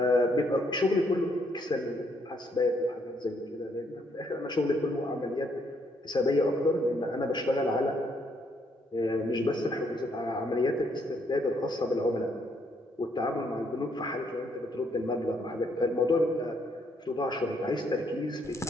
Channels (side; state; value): both; normal; correlation 0.71